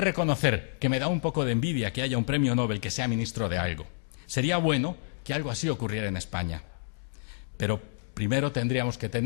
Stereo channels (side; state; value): right; silent; digital silence